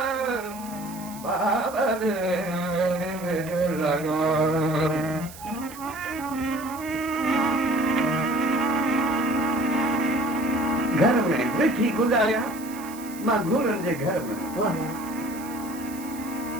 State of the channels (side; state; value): right; noise; hiss, 17 dB below the sound